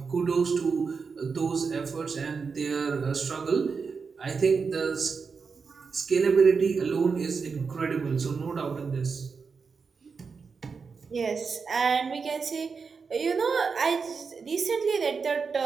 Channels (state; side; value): quieter; left; 5.2 dB